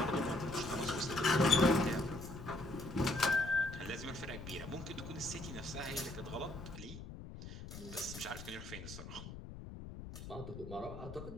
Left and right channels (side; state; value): left; noise; rumble, 11 dB below the sound